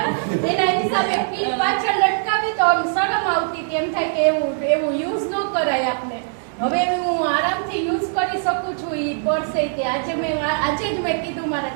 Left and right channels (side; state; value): left; silent; digital silence